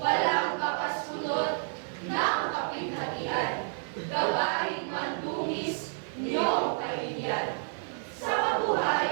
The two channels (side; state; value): left; silent; digital silence